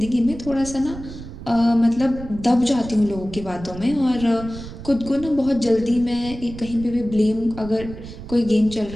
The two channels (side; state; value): right; noise; rumble, 13 dB below the sound